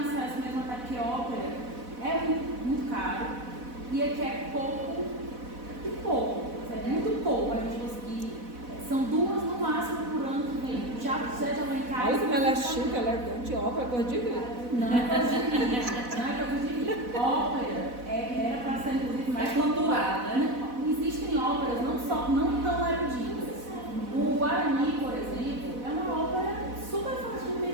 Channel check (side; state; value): left; late; 4.1 ms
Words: mesmo, até porque ópera é muito caro e aqui é pouco, é muito pouco a gente conseguir. São 2 no máximo por ano que vem. Já lá em casa. Olha como ela é chique, ela é grande, ópera, coisa de rir. Não é coisa de rir. Ópera era para ser inclusive mais cultural, né? Existem óperas não tão eruditas. O Guarani, por exemplo, é uma ópera super fácil de